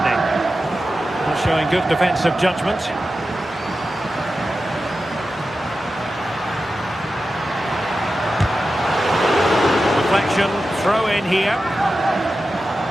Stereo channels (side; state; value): both; normal; correlation 0.92